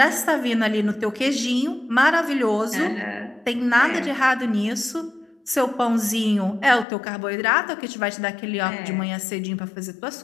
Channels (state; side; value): drops out; right; at 6.9 s